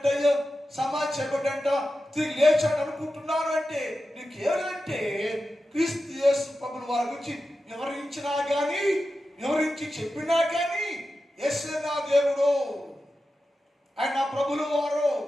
సమాధి చేయబడ్డంట, తిరిగి లేచాడు అనుకుంటున్నాను అంటే నీకేమంటే క్రీస్తు యేసు ప్రభుల వారి గురించి వివరించి చెప్పినా కానీ యేసే నా దేవుడు, ఆయన నా ప్రభుల వారు,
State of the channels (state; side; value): normal; both; correlation 0.91